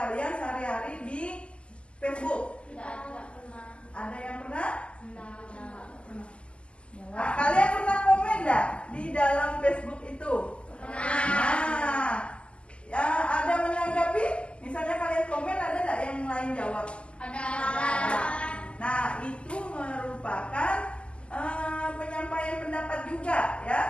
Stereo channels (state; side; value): late; right; 0.053 ms